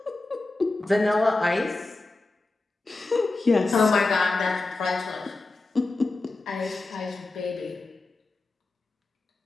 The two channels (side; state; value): right; quieter; 3.2 dB